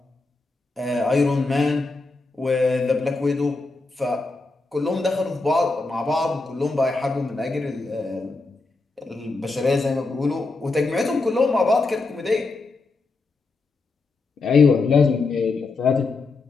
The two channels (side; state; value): right; quieter; 3.6 dB